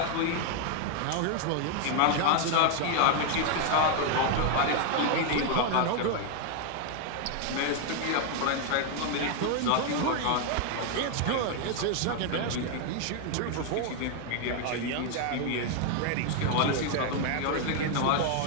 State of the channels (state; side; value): different; both; correlation 0.01